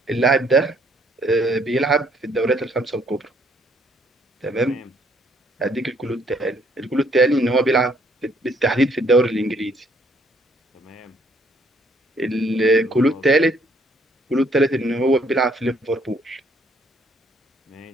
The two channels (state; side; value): normal; both; correlation 0.66